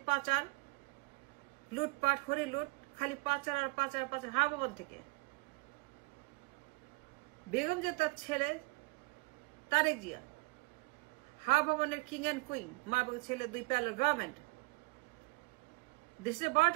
পাচার, লুটপাট, খড়ি লুট, খালি পাচার আর পাচার পাচার হাওয়া ভবন থেকে। বেগম জিয়া তার ছেলে তারেক জিয়া, হাওয়া ভবনের কিং অ্যান্ড কুইন, মা এবং ছেলে 2 প্যারালাল গভর্নমেন্ট, দেশে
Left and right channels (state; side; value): quieter; left; 25.7 dB